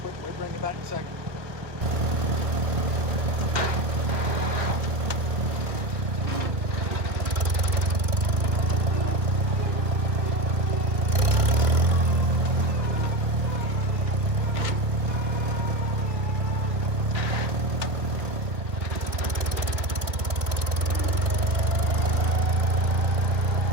We'll bring it back in a second.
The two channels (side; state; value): left; late; 1.5 ms